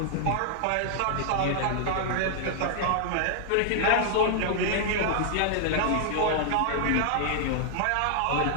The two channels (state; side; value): different; both; correlation -0.01